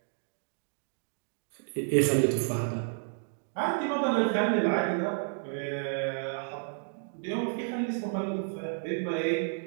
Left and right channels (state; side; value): silent; left; 57 dB below the other